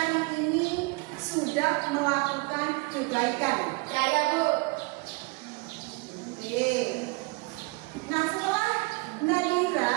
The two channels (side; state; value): left; quieter; 26.6 dB